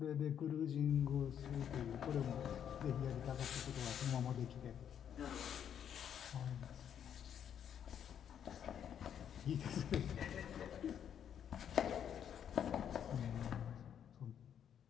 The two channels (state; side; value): quieter; right; 9.0 dB